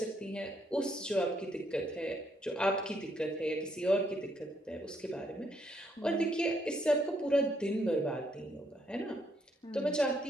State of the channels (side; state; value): both; normal; correlation 0.73